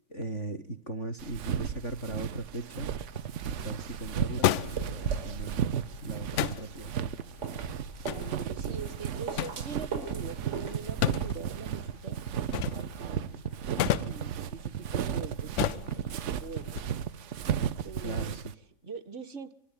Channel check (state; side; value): late; right; 3.5 ms